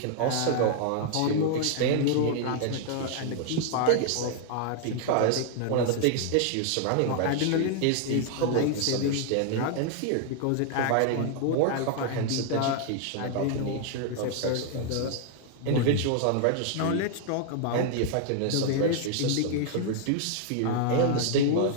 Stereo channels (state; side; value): different; both; correlation 0.00